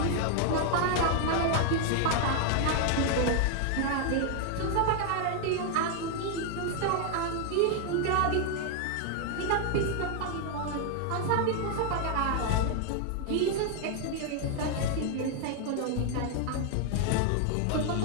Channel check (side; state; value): both; different; correlation 0.00